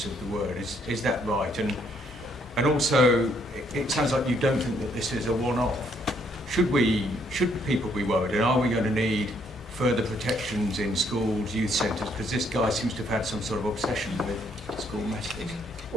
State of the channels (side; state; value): both; normal; correlation 0.70